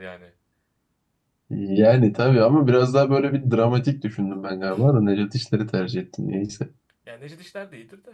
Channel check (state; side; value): identical; both; correlation 1.00